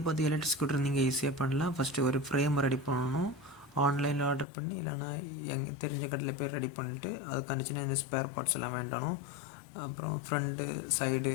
பார்த்து electric scooter நீங்கள் ஈஸியாக பண்ணலாம். ஃபஸ்ட்டு ஒரு ஃப்ரேம் ரெடி பண்ணணும். ஆன்லைனில் ஆர்டர் பண்ணி இல்லைனா தெரிஞ்ச கடையில் போய் ரெடி பண்ணிவிட்டு அதுக்கான சின்ன இந்த ஸ்பேர் பார்ட்ஸ் எல்லாம் வேண்டணும். அப்புறம் ஃப்ரண்ட்டு சைடு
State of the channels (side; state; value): right; drops out; at 4.5 s